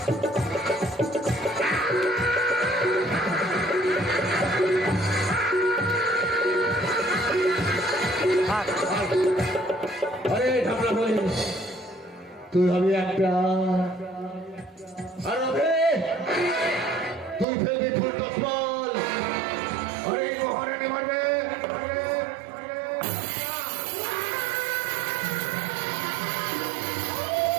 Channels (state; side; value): drops out; left; at 17.4 s